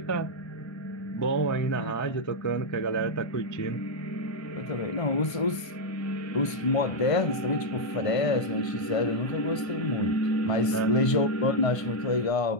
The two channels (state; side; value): late; right; 1.5 ms